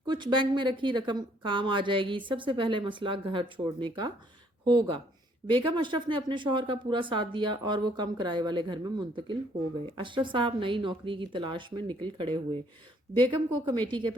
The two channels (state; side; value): normal; both; correlation 0.65